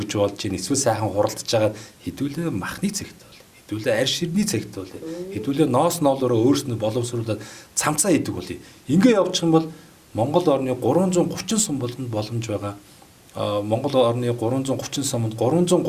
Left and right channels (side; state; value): both; identical; correlation 1.00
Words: болж ийн эсвэл сайхан хуралдаж байгаа хэдүүлээ махны цэгт хэдүүлээ арь ширний цагт бол хэдүүлээ ноос ноолороо өөрснөө боловсруулаад цамцаа хийдэг бол ингээ явчих юм бол Монгол орны 330 сум болгонд боломж байгаа. Монгол орны 330 сумд